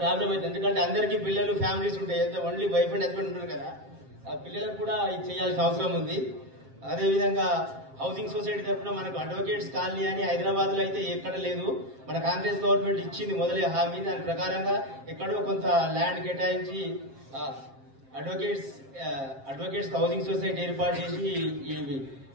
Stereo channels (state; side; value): late; left; 7.5 ms